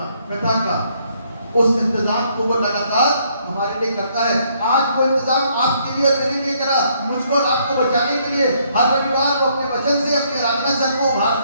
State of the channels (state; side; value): inverted; both; correlation -0.69